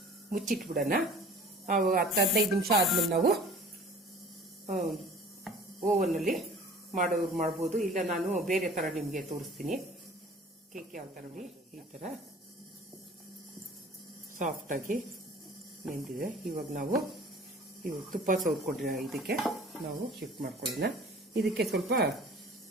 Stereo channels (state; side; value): normal; both; correlation 0.46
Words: ಮುಚ್ಚಿಟ್ಬಿಡೋಣ. 10-15 ನಿಮಿಷ ಆದ್ಮೇಲೆ ನಾವು ಓವನ್ನಲ್ಲಿ ಮಾಡ್ಬೋದು. ಇಲ್ಲ ನಾನು ಬೇರೆ ಥರ ನಿಮಗೆ ತೋರಿಸ್ತೀನಿ. ಕೇಕ್ ಯಾವ ಥರ ನೋಡಿ, ಈ ಥರ ಸಾಫ್ಟಾಗಿ ನೆಂದಿದೆ. ಇವಾಗ ನಾವು ತುಪ್ಪ ಸವರ್ಕೊಂಡ್ರೆ ಇದಕ್ಕೆ ನಾವು ಶಿಫ್ಟ್ ಮಾಡ್ಕೊಳ್ಳೋಣ. ಇದಕ್ಕೆ ಸ್ವಲ್ಪ